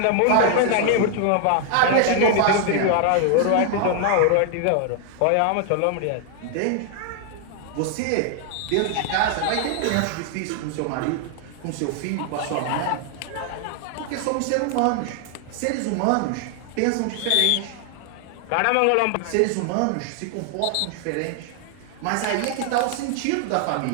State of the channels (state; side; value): different; both; correlation 0.00